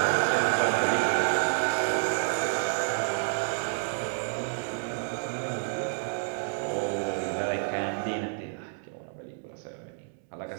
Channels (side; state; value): left; silent; 58 dB below the other